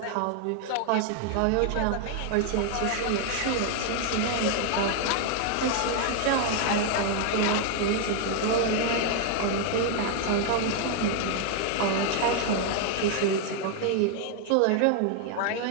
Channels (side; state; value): both; different; correlation 0.00